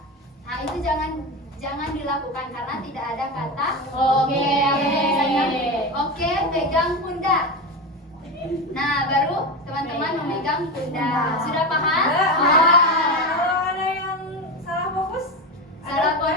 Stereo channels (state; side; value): normal; both; correlation 0.19